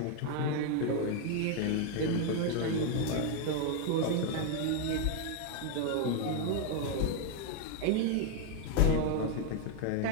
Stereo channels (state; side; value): different; both; correlation 0.01